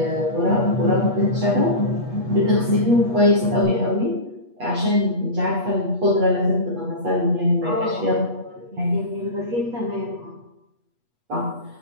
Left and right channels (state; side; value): late; left; 8.3 ms